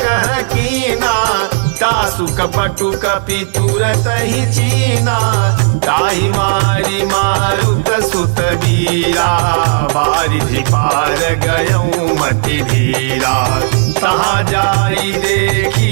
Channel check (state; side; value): silent; left; digital silence